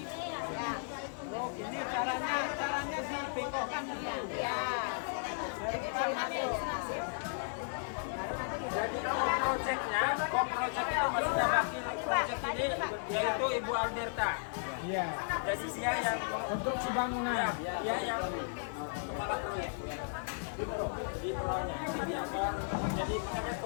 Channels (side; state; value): right; silent; 54 dB below the other